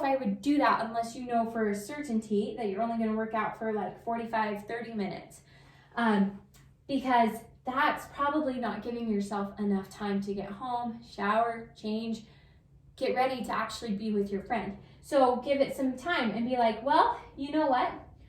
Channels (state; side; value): identical; both; correlation 1.00